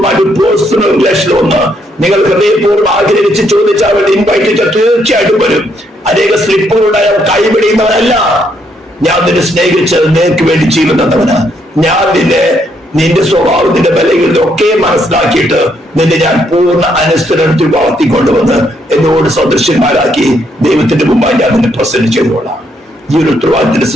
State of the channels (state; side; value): normal; both; correlation 0.73